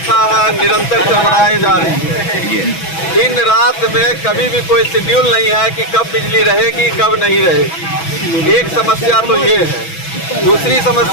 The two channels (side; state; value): right; late; 6.1 ms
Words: है निरंतर चरमराई जा रही है। दिन रात में कभी भी कोई शेड्यूल नहीं है कि कब बिजली रहेगी कब नहीं रहेगी। एक समस्या तो ये है। दूसरी